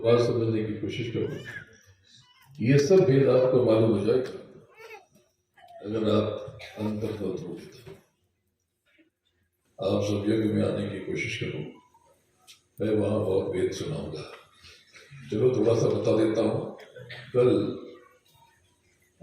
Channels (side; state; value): both; identical; correlation 1.00